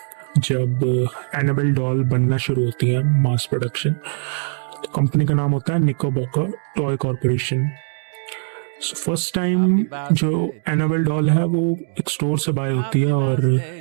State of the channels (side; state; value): left; silent; digital silence